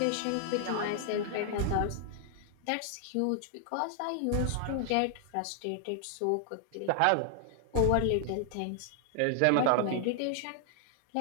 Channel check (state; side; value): different; both; correlation 0.00